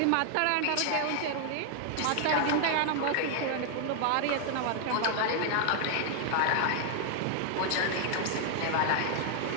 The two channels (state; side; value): different; both; correlation 0.00